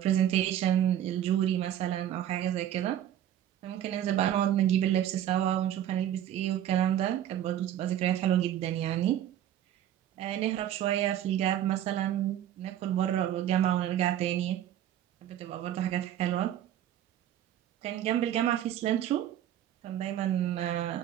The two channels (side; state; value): left; quieter; 11.3 dB